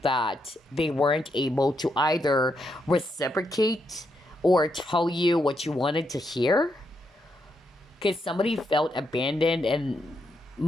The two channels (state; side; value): normal; both; correlation 0.80